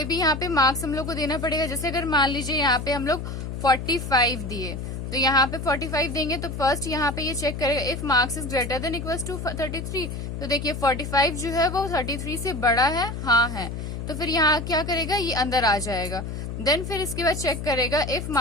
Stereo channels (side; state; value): left; noise; hum, 6 dB below the sound